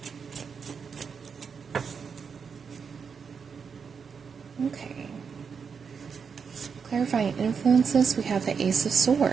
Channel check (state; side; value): quieter; left; 6.1 dB